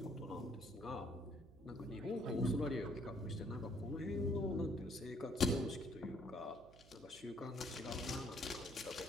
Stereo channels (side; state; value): right; noise; hum, 21 dB below the sound